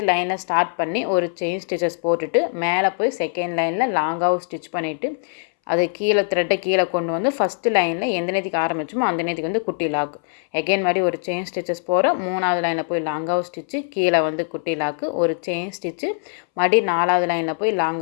லைனில் ஸ்டார்ட் பண்ணி ஒரு செயின் ஸ்டிச்சஸ் போட்டுட்டு மேலே போய் செகண்ட் லைனில் லாங்காக ஸ்டிச் பண்ணிவிட்டு அது கீழே த்ரெட்டை கீழே கொண்டு வந்து ஃபஸ்ட்டு லைனில் எந்த நேரத்துக்கு ஆரம்பிச்சோமோ அந்த நேரத்துக்கு வந்து குட்டி லாக். எகைன் மாதிரி ஒரு செயின் ஸ்டிச்சஸ் போகிறோம். 3வது லைனில் போய் லாங்காக ஸ்டிச்சு கீழே வந்து குட்டி லாக்கு. ஒரு செயின் ஸ்டிச்சு மறுபடி 4வது லைனில் போய்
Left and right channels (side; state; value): right; silent; 63 dB below the other